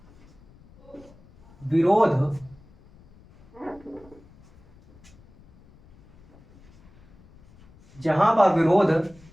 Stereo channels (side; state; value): left; noise; rumble, 27 dB below the sound